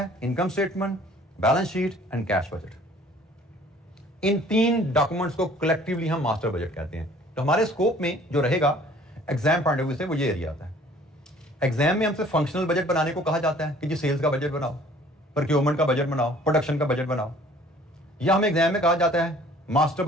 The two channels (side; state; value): both; normal; correlation 0.53